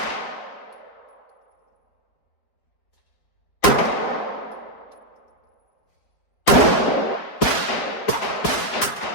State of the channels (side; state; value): right; late; 4.5 ms